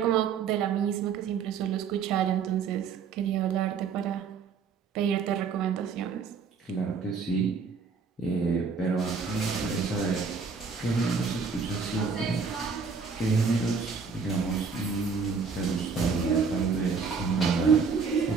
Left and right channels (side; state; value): left; quieter; 5.5 dB